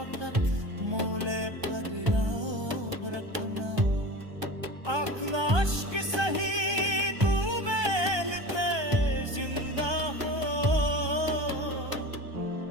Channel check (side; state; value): left; late; 1.2 ms